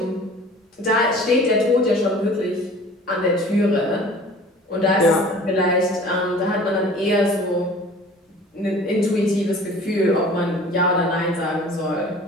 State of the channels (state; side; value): normal; both; correlation 0.46